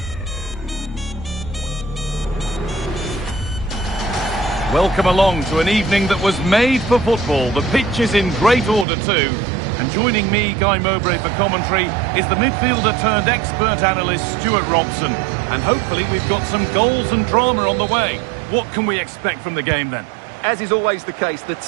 Welcome along to an evening that was made for football. The pitch is in great order too. And joining me, Guy Mowbray, for commentary is the midfielder turned expert analyst Stuart Robson. And hopefully we've got some goals and drama on the way. What can we expect from the game then? As is always the case, the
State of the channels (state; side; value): drops out; left; at 8.8 s